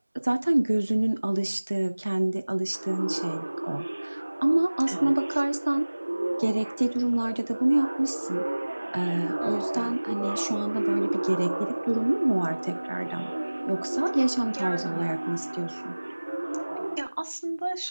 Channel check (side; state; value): both; inverted; correlation -1.00